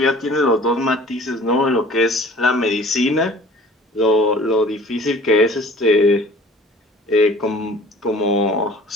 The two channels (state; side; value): normal; both; correlation 0.48